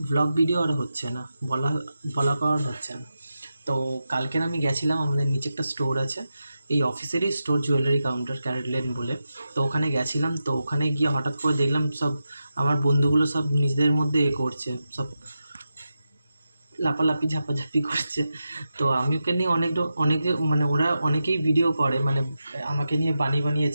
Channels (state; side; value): inverted; both; correlation -0.90